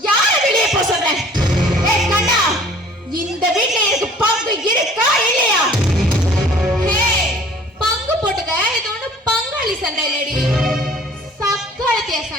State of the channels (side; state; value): both; normal; correlation 0.51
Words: யாரு வெளியே போக சொல்றேன்? கண்ணா, இந்த வீட்டுல எனக்கு பங்கு இருக்கா இல்லையா? பங்கு போட்டுக்க. இது ஒண்ணு பங்காளி சண்டை இல்லடி, சக்காலத்திய